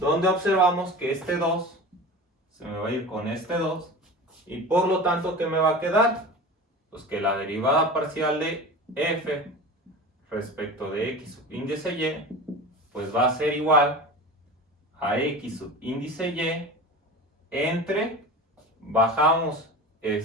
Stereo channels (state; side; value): normal; both; correlation 0.33